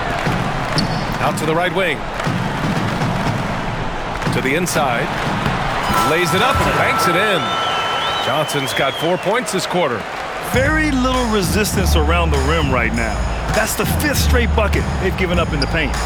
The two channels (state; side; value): identical; both; correlation 1.00